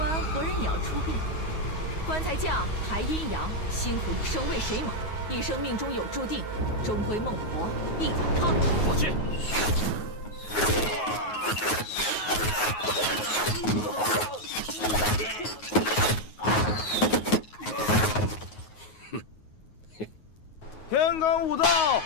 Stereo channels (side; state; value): right; late; 9.4 ms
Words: 活人也要出殡。棺材匠抬阴阳，辛苦一生为谁忙？一生命中有注定，终归孟婆一碗汤。放弃！天干物燥，